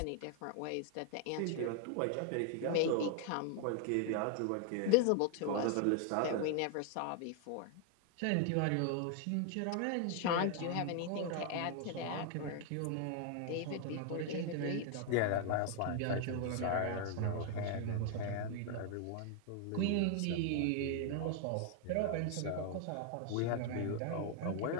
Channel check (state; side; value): different; both; correlation 0.00